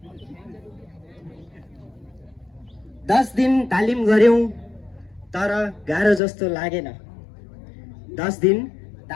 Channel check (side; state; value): right; drops out; at 6.2 s